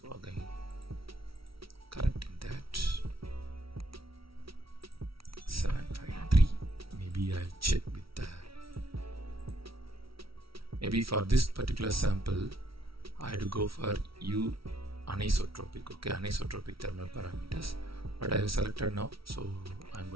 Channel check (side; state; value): left; late; 0.75 ms